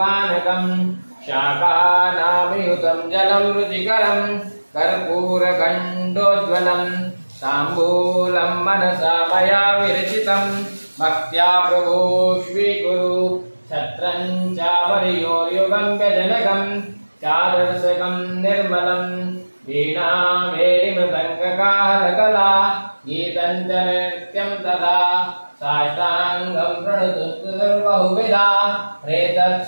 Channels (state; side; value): inverted; both; correlation -1.00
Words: शाकानामयुतं जलं रुचिकरं कर्पूरखण्डोज्ज्वलं ताम्बूलं मनसा मया विरचितं भक्त्या प्रभो स्वीकुरु छत्रं चामर्योयुगं व्यजनकं चारसकं निर्मलं वीणामेरिमृदङ्गकाहलकला गीतं च नृत्यं तथा साष्टाङ्गं प्रणुतुर्बहुविधा